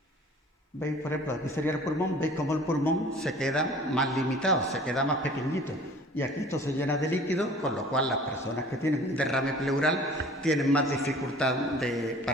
¿Veis? Por ejemplo, aquí sería el pulmón, veis cómo el pulmón se queda más limitado, se queda más pequeñito. Y aquí esto se llena de líquido, con lo cual las personas que tienen un derrame pleural tienen más dificultad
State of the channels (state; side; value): normal; both; correlation 0.47